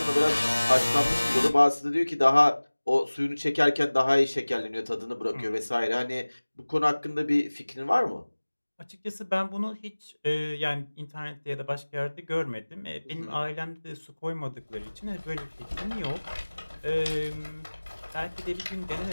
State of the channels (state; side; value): inverted; both; correlation -1.00